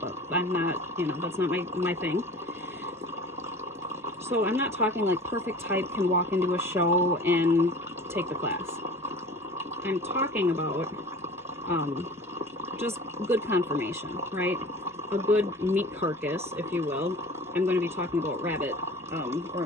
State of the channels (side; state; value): both; normal; correlation 0.41